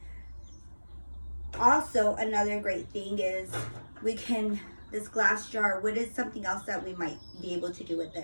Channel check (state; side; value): inverted; both; correlation -1.00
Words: Also, another great thing is this glass jar, what is something else that we might be able to do with